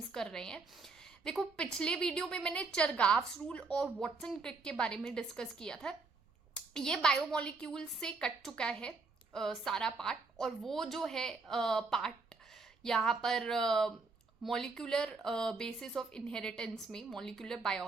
हैं। देखो, पिछले वीडियो में मैंने चरगाव्स रूल और वॉटसन क्रिक के बारे में डिस्कस किया था। ये बायोमोलिक्यूल से कट चुका है सारा पार्ट, और वो जो है पार्ट यहाँ पर मॉलिक्यूलर बेसिस ऑफ इनहेरिटेंस में, मॉलिक्यूलर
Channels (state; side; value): quieter; left; 4.0 dB